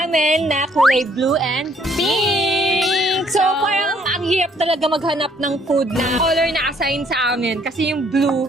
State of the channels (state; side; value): normal; both; correlation 0.65